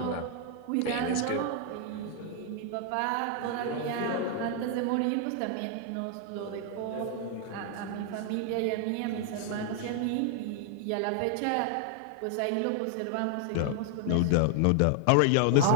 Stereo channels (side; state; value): both; different; correlation 0.00